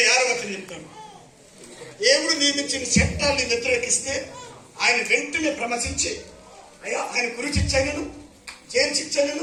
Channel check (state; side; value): identical; both; correlation 1.00